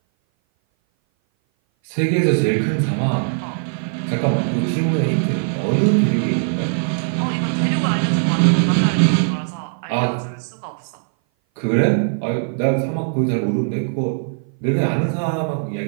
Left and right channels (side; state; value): left; silent; 59 dB below the other